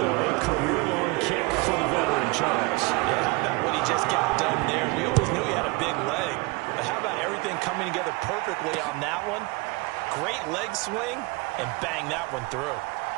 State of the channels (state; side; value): quieter; left; 25.5 dB